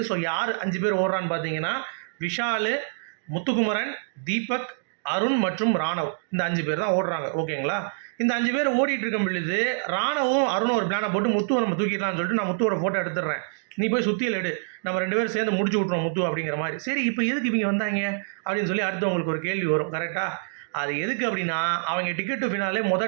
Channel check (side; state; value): left; silent; digital silence